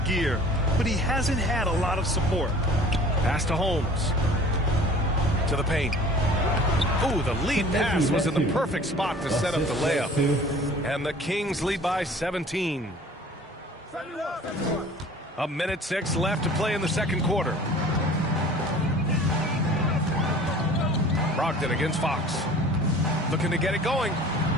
gear, but he hasn't had a lot of support. Pass to Holmes. To the paint. Ooh, the lead pass was in the perfect spot to set up the layup. And the Kings lead by 17. A minute 6 left to play in the second quarter. Brogdon against Fox. Looking to get it going.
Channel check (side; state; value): both; normal; correlation 0.47